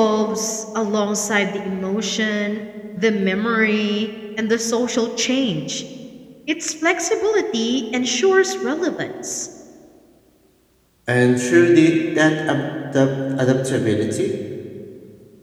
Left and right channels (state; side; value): identical; both; correlation 1.00